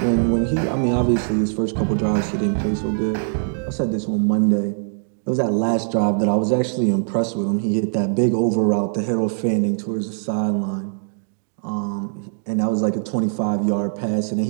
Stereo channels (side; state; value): left; silent; digital silence